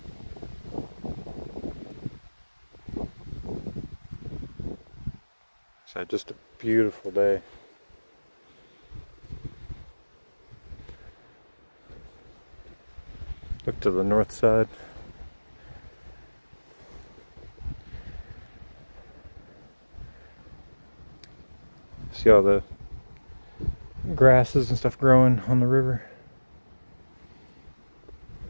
So just a beautiful day. Look to the north side. See all the grasses and stuff growing on the river.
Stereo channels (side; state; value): both; inverted; correlation -1.00